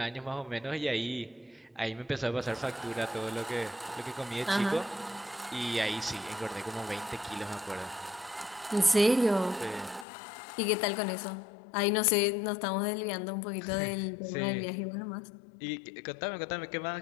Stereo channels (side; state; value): right; drops out; at 10.1 s